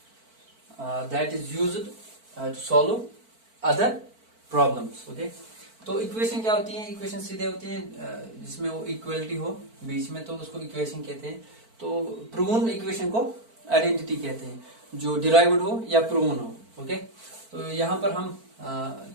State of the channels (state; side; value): late; left; 4.5 ms